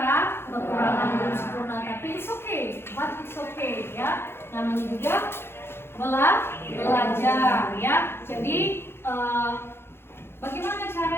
belum sempurna, tapi it's okay, but it's okay, ya. Namanya juga belajar, ya. Jadi bagaimana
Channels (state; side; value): late; right; 0.11 ms